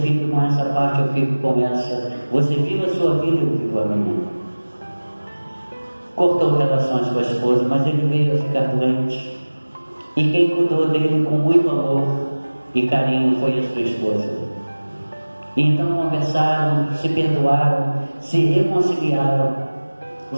com essa parte, eu fico com essa. Você vive a sua vida, eu vivo a minha. Cortou relações com a esposa, mas ele veio a ficar doente. E quem cuidou dele com muito amor e carinho foi a sua esposa. E então conversaram, se perdoaram, se reconciliaram,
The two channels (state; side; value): inverted; both; correlation -1.00